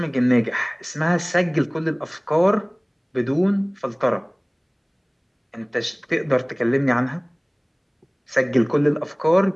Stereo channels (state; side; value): identical; both; correlation 1.00